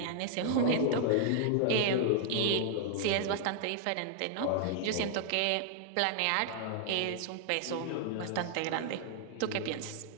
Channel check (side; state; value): both; different; correlation -0.01